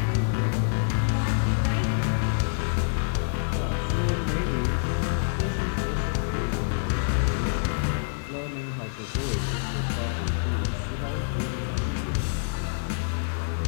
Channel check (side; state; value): right; silent; 60 dB below the other